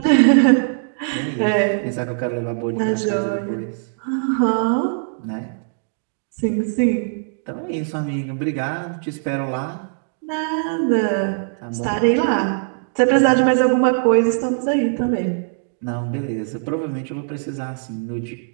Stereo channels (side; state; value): left; silent; digital silence